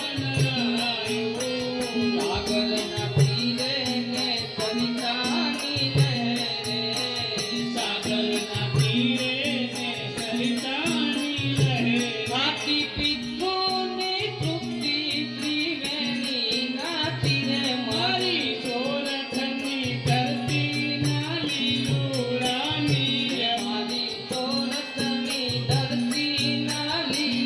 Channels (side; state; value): both; identical; correlation 1.00